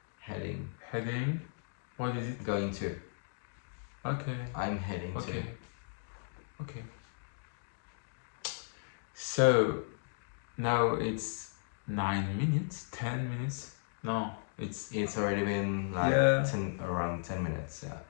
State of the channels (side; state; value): right; silent; digital silence